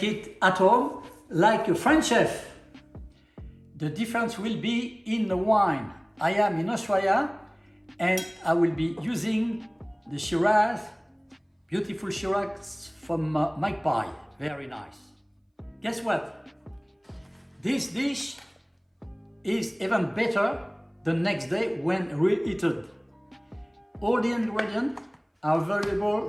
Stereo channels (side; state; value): both; identical; correlation 1.00